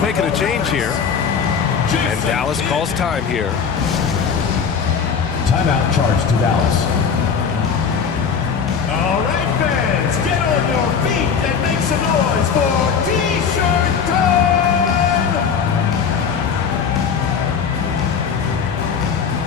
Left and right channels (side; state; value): right; quieter; 6.5 dB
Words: making a change here. And Dallas calls time here. Timeout charged to Dallas. All right, fans, get on your feet and make some noise for T-shirt time!